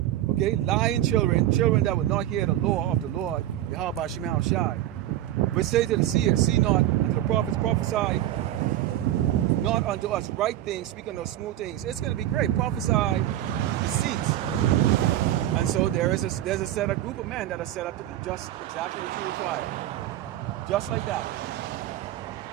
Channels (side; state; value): left; quieter; 13.2 dB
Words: Okay? Lying children that will not hear the law of the Lord, Yahweh Shema Shai. But say to the seers, see not, and to the prophets, prophesy not unto us right things, speak unto us smooth things. It's going to be great. Prophesy deceits. And so there's a set of group of men that are set up to do just exactly what you require. Just like that.